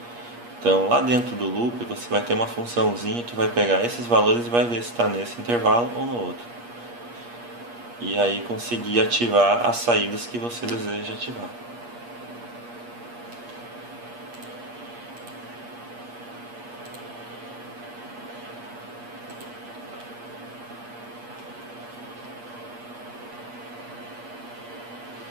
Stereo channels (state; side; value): late; left; 8.4 ms